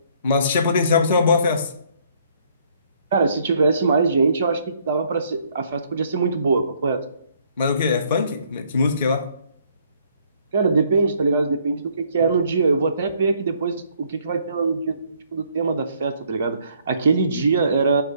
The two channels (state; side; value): inverted; both; correlation -0.65